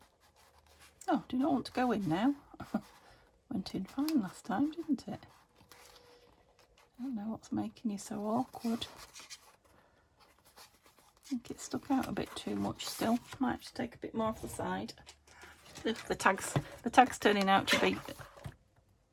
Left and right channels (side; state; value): both; identical; correlation 1.00